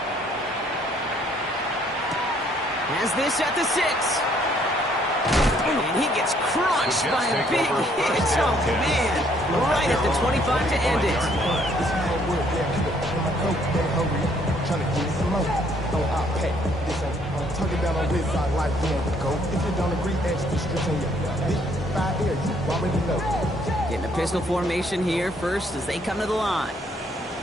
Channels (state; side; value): normal; both; correlation 0.65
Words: Has this at the 6. And he gets crushed by a big hit. Oh, man. Right at the 25 to end it. Getting a pistol formation here first as they come to the line.